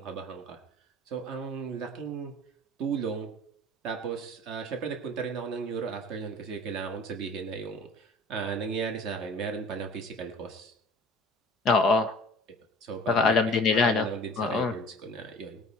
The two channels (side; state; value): both; normal; correlation 0.45